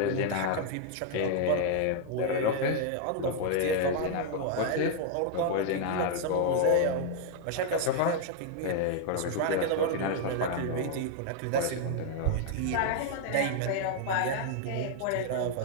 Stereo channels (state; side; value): different; both; correlation 0.00